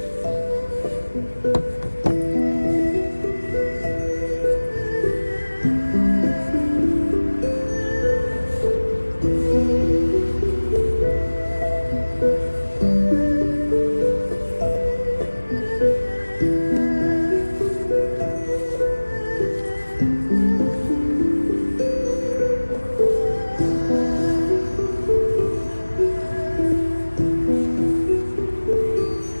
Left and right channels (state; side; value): inverted; both; correlation -1.00